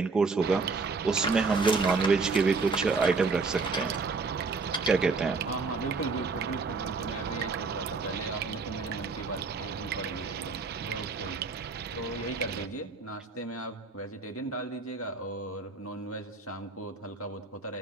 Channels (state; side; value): quieter; left; 4.3 dB